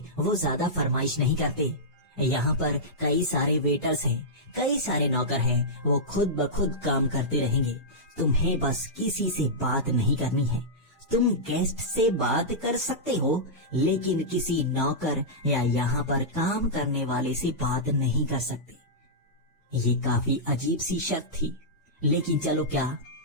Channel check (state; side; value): normal; both; correlation -0.13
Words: वो ज्यादा फरमाइश नहीं करते। यहाँ पर कई सारे वेटर्स हैं, कई सारे नौकर हैं, वो खुद ब खुद काम करते रहेंगे। तुम्हें बस किसी से बात नहीं करनी है। तुम गेस्ट से बात कर सकते हो, लेकिन किसी नौकर या यहाँ पर काम करने वाले से बात नहीं कर सकते। ये काफी अजीब सी शर्त थी, लेकिन चलो क्या,